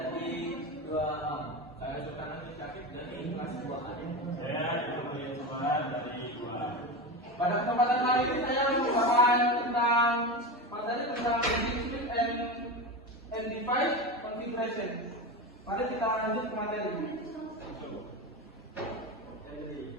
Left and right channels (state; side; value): normal; both; correlation 0.22